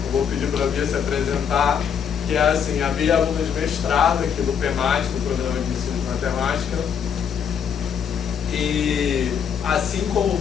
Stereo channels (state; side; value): quieter; right; 7.7 dB